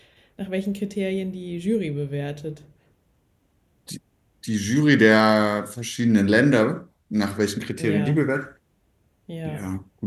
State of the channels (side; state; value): both; identical; correlation 1.00